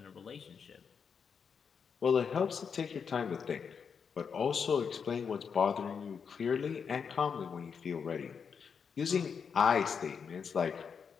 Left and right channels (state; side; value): quieter; right; 6.4 dB